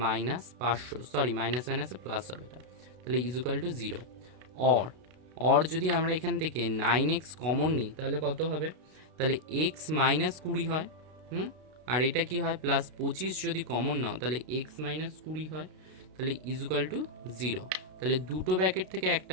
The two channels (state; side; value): late; left; 32 ms